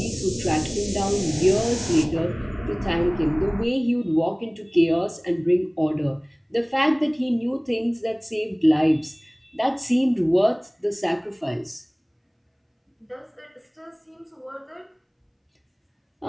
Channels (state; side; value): identical; both; correlation 1.00